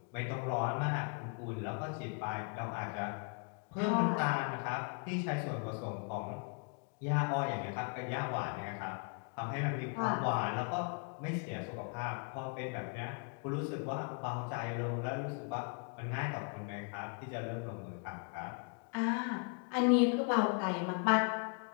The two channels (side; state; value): right; quieter; 38.2 dB